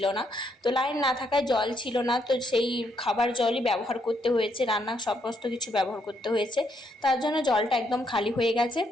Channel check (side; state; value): both; normal; correlation 0.74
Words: না, তো লাইন না থাকায় জল ছিল না, তো সেই খাবার জলই ব্যবহার করতে হয়েছে, রান্না সমস্ত কিছু ব্যবহার করতে হয়েছে। তার জন্য জলটা একদম খালি হয়ে গেছে।